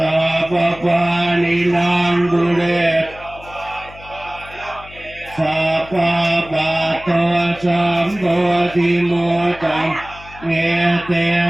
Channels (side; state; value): left; noise; hum, 19 dB below the sound